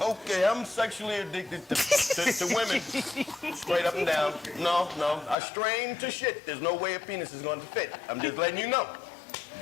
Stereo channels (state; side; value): drops out; right; at 5.4 s